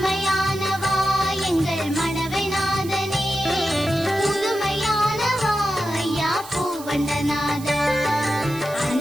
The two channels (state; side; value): noise; right; hiss, 16 dB below the sound